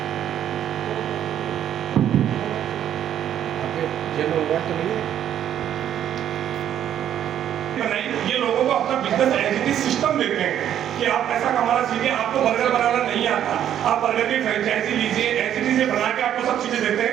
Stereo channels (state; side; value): quieter; left; 10.4 dB